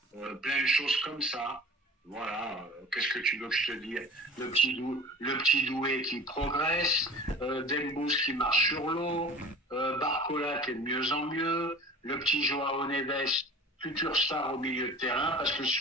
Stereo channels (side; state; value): both; normal; correlation 0.40